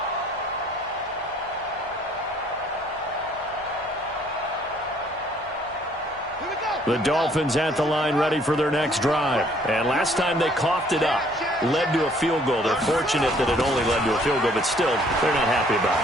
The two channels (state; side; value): noise; left; hum, 26 dB below the sound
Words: The Dolphins at the line ready for their next drive. And last time they coughed it up, led to a field goal. They're fortunate that it only led to a field goal, but still, they're not happy about